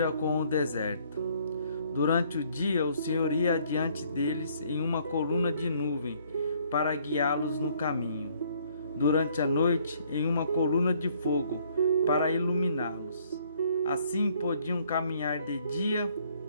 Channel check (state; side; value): inverted; both; correlation -0.63